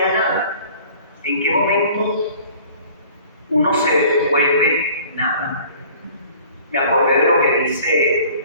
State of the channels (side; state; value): both; inverted; correlation -0.49